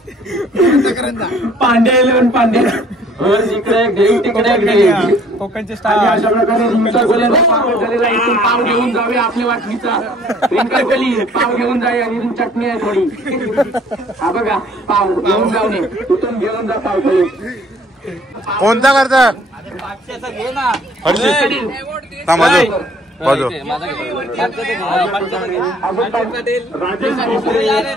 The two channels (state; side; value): normal; both; correlation 0.57